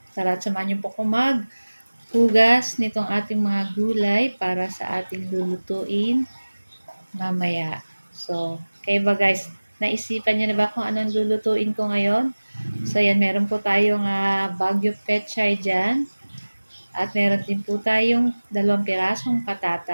tara samahan niyo po ko maghugas nitong ating mga gulay para sa ating lulutuin mamaya. So, kayo ba guys, naisipan niyo na ba kung anong lulutuin ko ngayon? So, ayan, meron po tayong Baguio Pechay dyan. At meron din po tayong 2 pirasong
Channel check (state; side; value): inverted; both; correlation -1.00